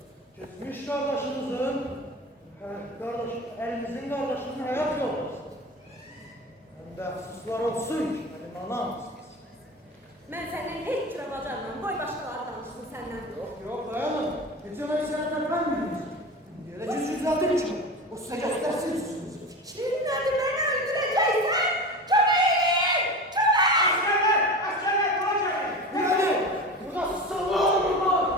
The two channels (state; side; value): normal; both; correlation 0.29